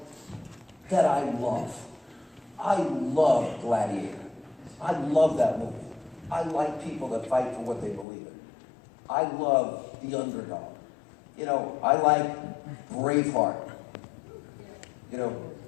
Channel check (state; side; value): drops out; right; at 8.1 s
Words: that I love. I love Gladiator. I love that movie. I like people that fight for what they believe in. I love the underdog. You know, I like Braveheart. You know,